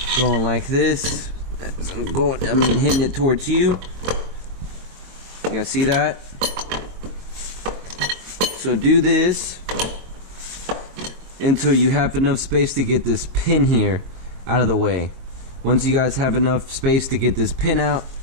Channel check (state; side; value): late; left; 22 ms